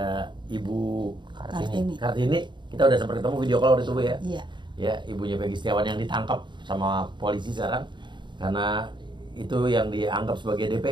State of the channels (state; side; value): late; left; 0.22 ms